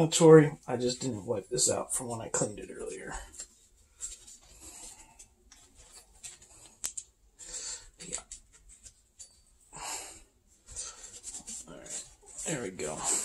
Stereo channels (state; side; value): identical; both; correlation 1.00